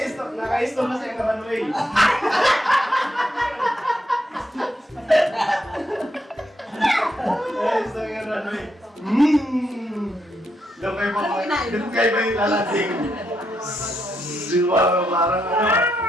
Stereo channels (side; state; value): both; normal; correlation 0.80